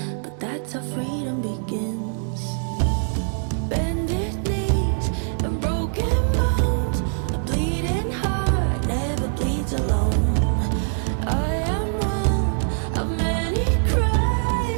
but that's how freedom begins. Bended knees and broken bones, a bleeding heart never bleeds alone. I am one of many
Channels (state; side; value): silent; left; digital silence